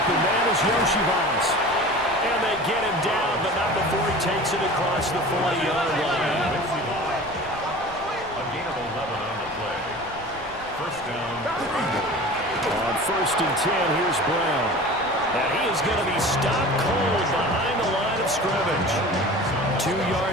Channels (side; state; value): left; noise; rumble, 20 dB below the sound